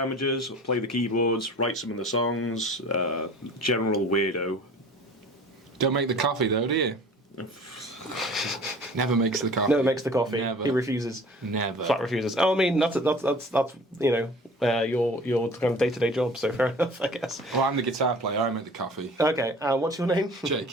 play the keyboards, write some of the songs. General weirdo. Don't make the coffee though, do you? Never makes the coffee. Never makes the coffee. Never. He refuses. Never. Flat refuses. Oh, I mean, that's you know, your kind of day-to-day job. So fair enough, I guess. Well, I'm the guitar player. I make the coffee. Okay. What's your name?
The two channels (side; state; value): both; normal; correlation 0.44